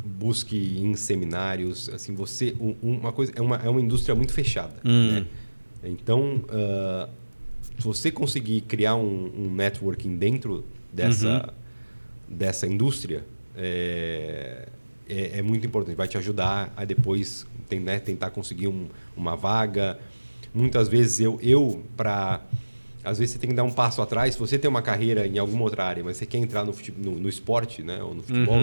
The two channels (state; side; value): inverted; both; correlation -1.00